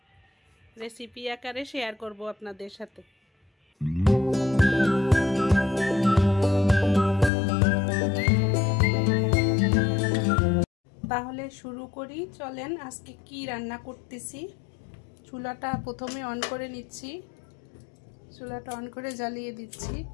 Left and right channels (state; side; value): drops out; right; at 7.3 s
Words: রেসিপি আকারে শেয়ার করব আপনাদের সাথে। তাহলে শুরু করি, চলেন। আজকে কি রান্না করতেছি। চুলাটা প্রথমে অন করে নিচ্ছি, চুলাটা অন করে জ্বালিয়ে দিচ্ছি।